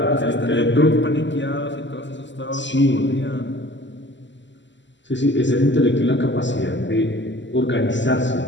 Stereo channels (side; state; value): right; late; 0.53 ms